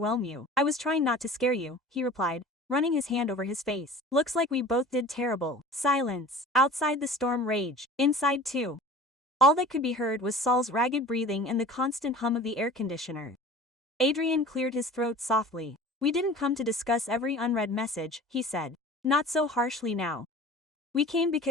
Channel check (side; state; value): both; normal; correlation 0.41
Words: you. I was trying not to scare you, he replied, running his hand over his face. Looks like we both did terrible. Silence. Outside the storm raged. Inside too. All that could be heard was Saul's ragged breathing and the constant hum of the air conditioner. Adrian cleared his throat softly. We didn't come to discuss every unread message, he said. Not so harshly now. We came